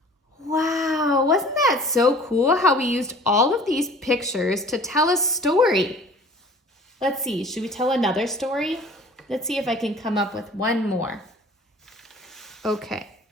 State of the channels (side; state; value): both; normal; correlation 0.47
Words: Wow, wasn't that so cool how we used all of these pictures to tell a story? Let's see, should we tell another story? Let's see if I can come up with one more. Okay.